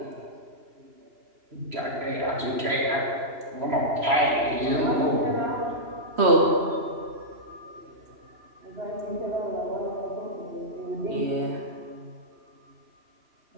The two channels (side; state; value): left; late; 2.9 ms